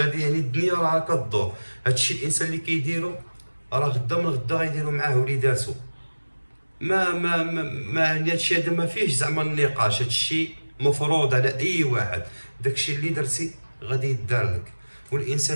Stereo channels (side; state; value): both; inverted; correlation -1.00